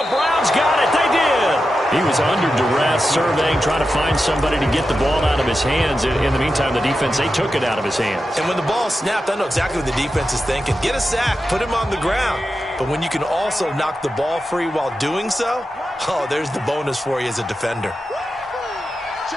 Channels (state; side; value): normal; both; correlation 0.90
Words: Browns got it. They did. He was under duress, surveying, trying to find somebody to get the ball out of his hands. In the meantime, the defense, they took it out of his hands. And when the ball snapped, I know exactly what the defense is thinking. Get a sack. Put him on the ground. But when you can also knock the ball free while doing so, oh, there's the bonus for you as a defender.